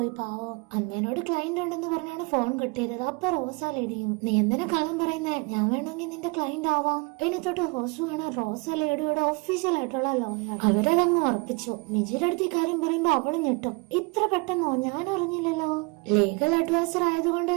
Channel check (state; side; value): quieter; left; 29.3 dB